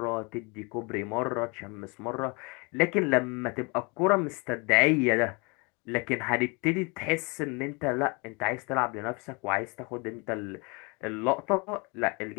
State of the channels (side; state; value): right; quieter; 29.9 dB